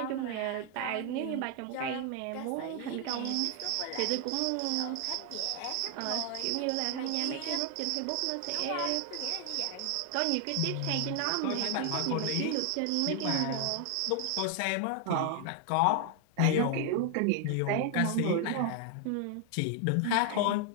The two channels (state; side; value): different; both; correlation 0.00